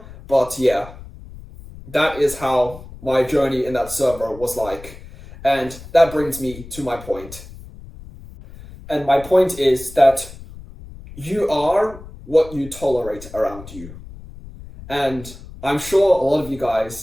but yeah, that is how my journey in that server was like. And that brings me to my point. And my point is that you are what you tolerate around you. And I'm sure a lot of you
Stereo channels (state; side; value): noise; left; rumble, 16 dB below the sound